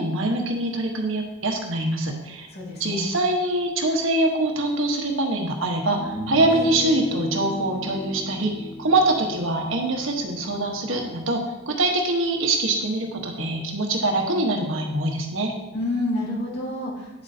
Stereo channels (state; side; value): normal; both; correlation 0.14